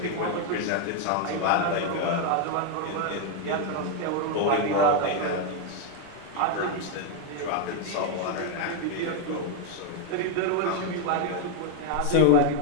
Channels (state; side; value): different; both; correlation 0.01